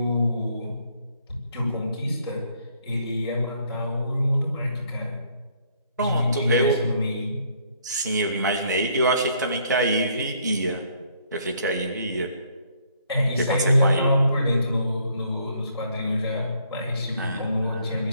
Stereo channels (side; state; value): both; inverted; correlation -0.66